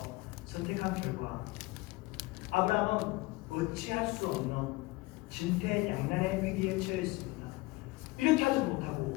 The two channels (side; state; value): right; quieter; 22.4 dB